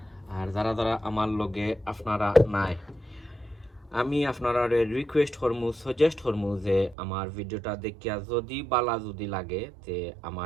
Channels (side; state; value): left; drops out; at 7.0 s